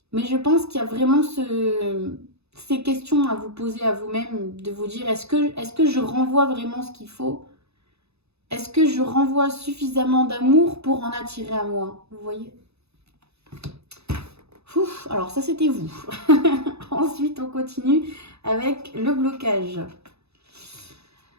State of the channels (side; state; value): left; late; 0.79 ms